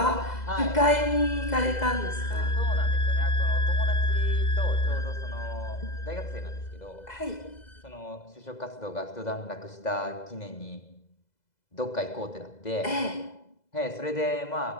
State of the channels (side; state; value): right; late; 2.0 ms